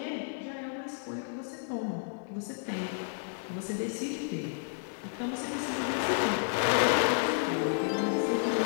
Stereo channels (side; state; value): right; silent; digital silence